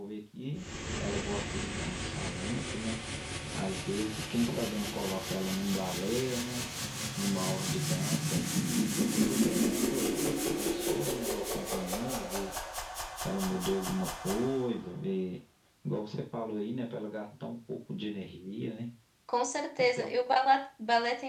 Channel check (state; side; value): identical; both; correlation 1.00